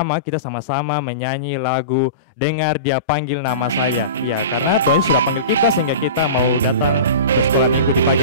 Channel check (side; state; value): both; inverted; correlation -0.32